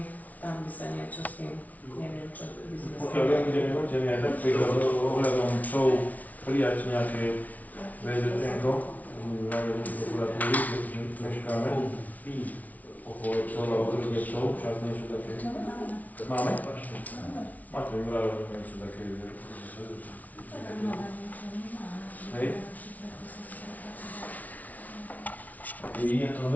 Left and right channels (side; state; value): right; late; 0.073 ms